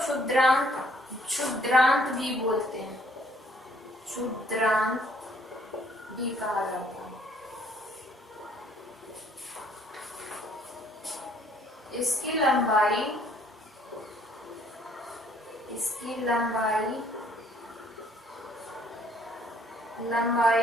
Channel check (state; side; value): normal; both; correlation 0.63